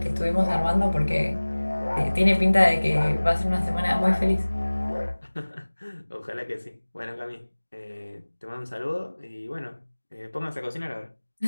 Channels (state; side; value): inverted; both; correlation -1.00